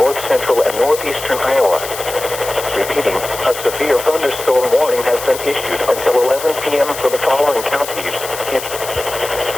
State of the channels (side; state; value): left; noise; hiss, 10 dB below the sound